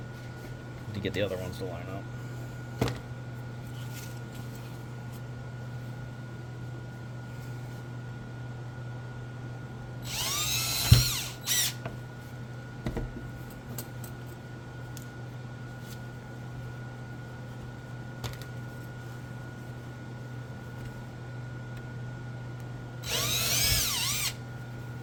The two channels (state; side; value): identical; both; correlation 1.00